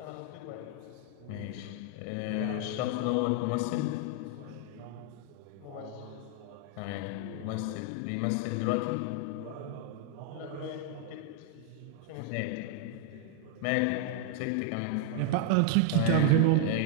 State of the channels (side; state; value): both; different; correlation 0.00